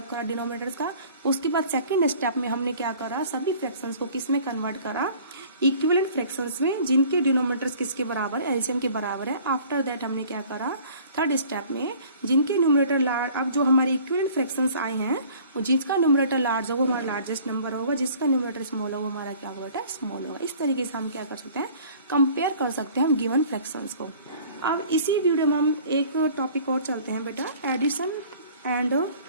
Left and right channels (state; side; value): inverted; both; correlation -0.50